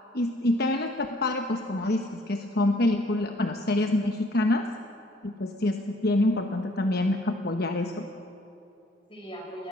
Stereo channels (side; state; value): both; normal; correlation 0.61